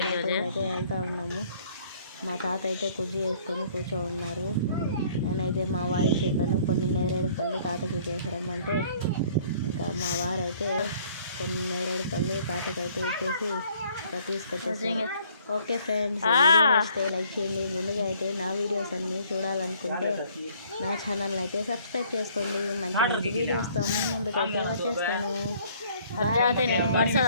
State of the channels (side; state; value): both; inverted; correlation -0.59